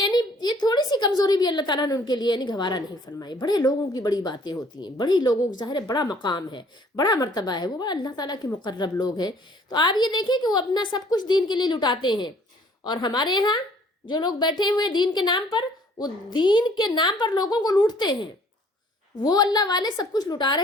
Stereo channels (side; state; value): both; normal; correlation 0.58